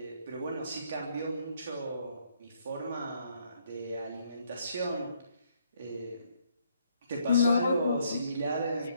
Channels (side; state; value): both; inverted; correlation -0.70